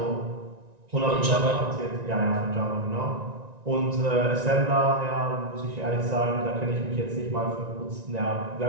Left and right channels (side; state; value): left; late; 1.9 ms